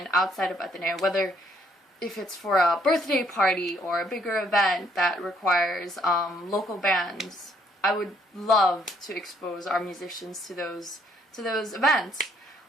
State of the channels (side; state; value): both; normal; correlation 0.67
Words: outside of Ateneo, whether if it's for a birthday party or a bigger event that requires local bands. I would love to expose our musicians to those events.